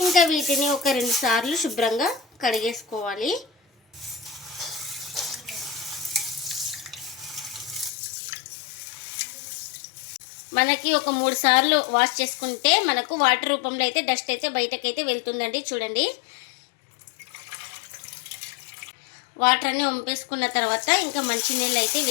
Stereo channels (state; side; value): drops out; right; at 7.9 s